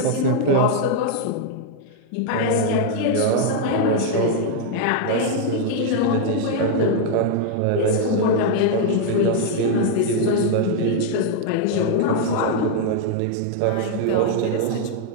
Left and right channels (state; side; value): different; both; correlation 0.00